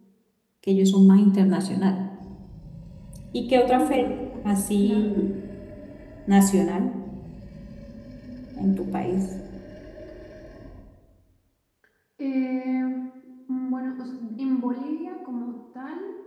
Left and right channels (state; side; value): identical; both; correlation 1.00